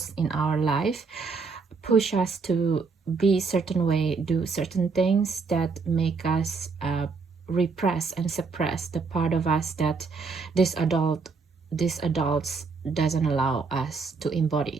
in our life push us to be certain way, do certain things that make us repress and suppress the part of us that this adults doesn't allow us to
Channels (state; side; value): quieter; left; 4.7 dB